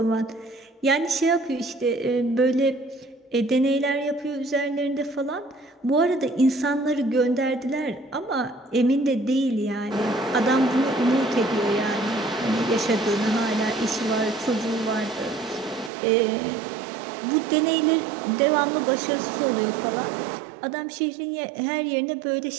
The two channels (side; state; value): left; drops out; at 15.9 s